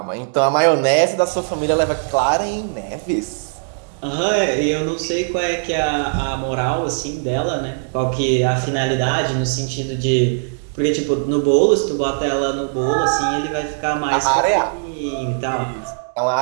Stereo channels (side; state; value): left; silent; digital silence